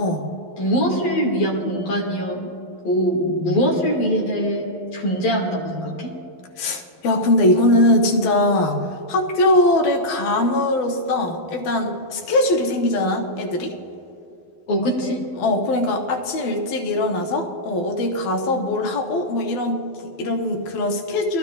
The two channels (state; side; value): late; right; 12 ms